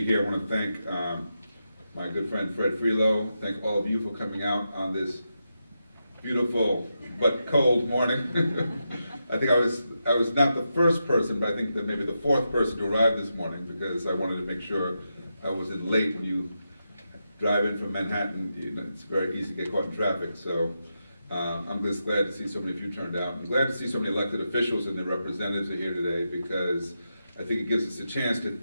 here. I want to thank my good friend Fred Freelo. Thank all of you for coming out on this beautiful but cold morning. I think I was not the first person, but I think that maybe the fourth person to arrive this morning, because I wanted to make sure I wasn't late. When you drive in from Manhattan, it's very easy to get caught in traffic. So I'm just glad to see so many of you turned out. I'm glad to see so many elected officials and their representatives are here today, because I think it gives us a chance to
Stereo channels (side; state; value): both; inverted; correlation -0.87